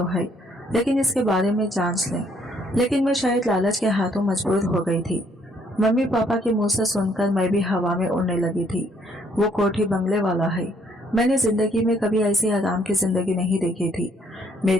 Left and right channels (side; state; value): both; normal; correlation 0.66